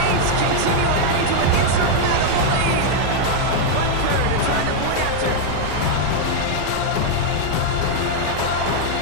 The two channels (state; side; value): different; both; correlation 0.00